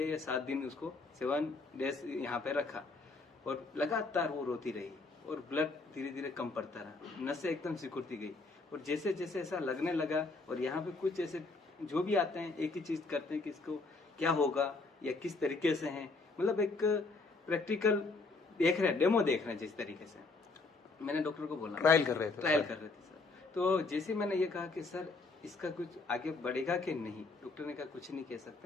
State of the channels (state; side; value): quieter; right; 3.7 dB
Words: या 7 दिन उसको 7 डेज यहाँ पे रखा और लगातार वो रोती रही और ब्लड धीरे धीरे कम पड़ता रहा, नसें एकदम सिकुड़ती गई। और जैसे जैसे ऐसा लगने लगा, और यहाँ पे कुछ ऐसे जो भी आते हैं एक ही चीज करते हैं कि इसको क्या होगा या किस तरीके से है, मतलब एक प्रैक्टिकल देख रहे हैं, डेमो देख रहे हैं। जिस तरीके से मैंने डॉक्टर को बोला, ट्रायल कर रहे थे सर। तो जैसे मैंने ये कहा कि सर इसका कुछ आगे बढ़ेगा कि नहीं, डॉक्टर ने कहा कुछ नहीं कह